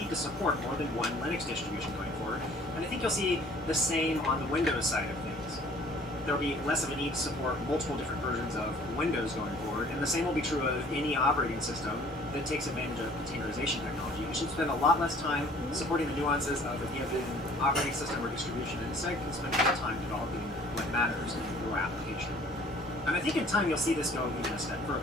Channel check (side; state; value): both; normal; correlation 0.54